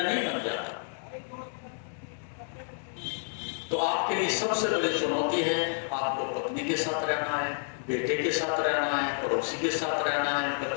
नहीं बन जाता। तो आपके लिए सबसे बड़ी चुनौती है, आपको पत्नी के साथ रहना है, बेटे के साथ रहना है, पड़ोसी के साथ रहना है,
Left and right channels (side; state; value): right; silent; digital silence